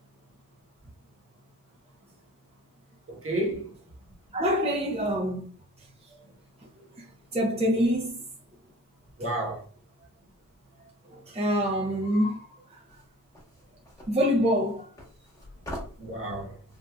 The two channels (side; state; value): both; normal; correlation 0.47